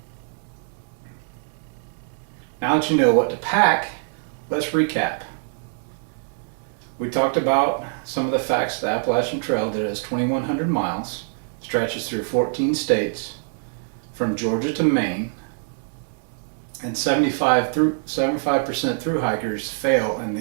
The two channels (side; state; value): left; silent; digital silence